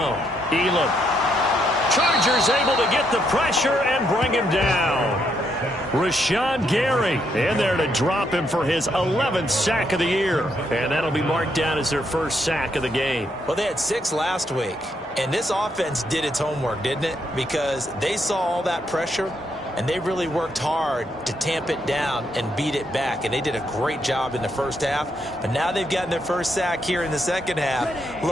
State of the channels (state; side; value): normal; both; correlation 0.76